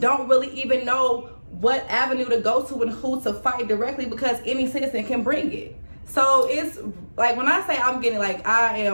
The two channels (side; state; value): both; inverted; correlation -1.00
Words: really even know what avenue to go to and who to fight directly, because any citizen can bring it. So it's like, when I say I'm getting I